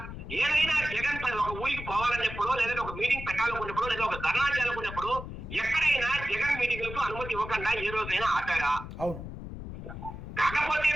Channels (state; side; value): noise; left; rumble, 10 dB below the sound